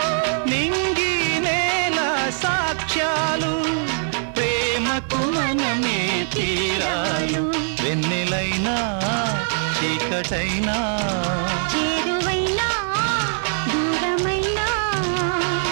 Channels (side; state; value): left; silent; digital silence